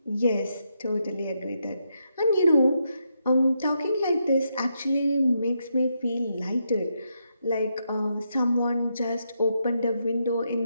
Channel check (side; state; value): both; inverted; correlation -0.81